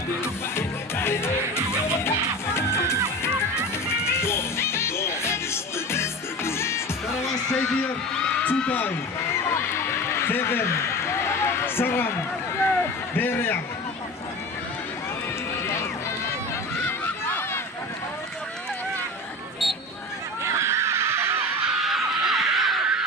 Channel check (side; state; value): both; normal; correlation 0.32